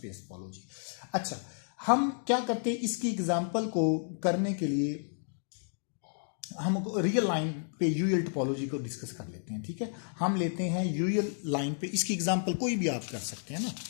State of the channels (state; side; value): silent; right; digital silence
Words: टोपोलॉजी। अच्छा, हम क्या करते हैं, इसकी एग्जांपल को करने के लिए हम रियल लाइन पे यूएल टोपोलॉजी को डिस्कस कर लेते हैं, ठीक है। हम लेते हैं यूएल लाइन पे, इसकी एग्जांपल कोई भी आप कर सकते हैं